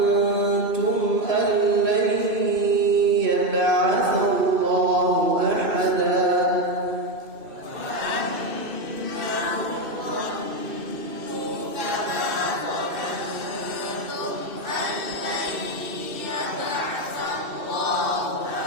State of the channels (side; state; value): left; late; 2.6 ms